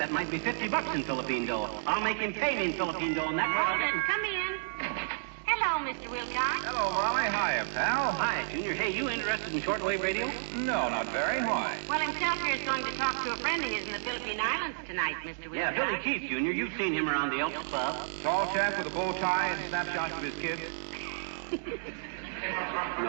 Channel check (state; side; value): silent; left; digital silence